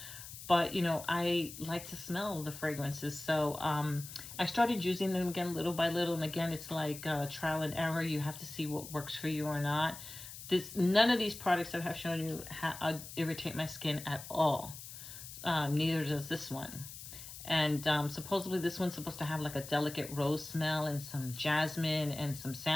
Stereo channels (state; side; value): noise; left; hiss, 12 dB below the sound